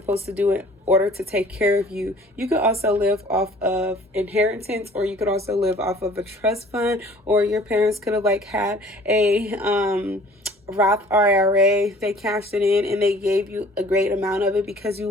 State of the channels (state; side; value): normal; both; correlation 0.51